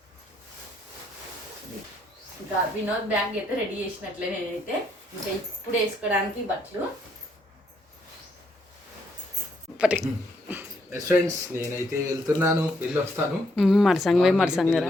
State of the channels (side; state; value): both; normal; correlation 0.73